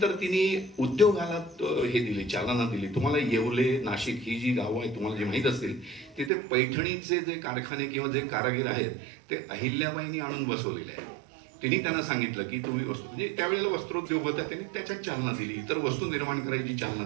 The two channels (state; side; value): drops out; left; at 6.3 s